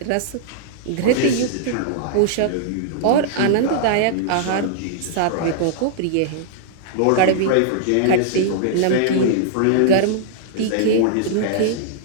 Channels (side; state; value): both; different; correlation -0.02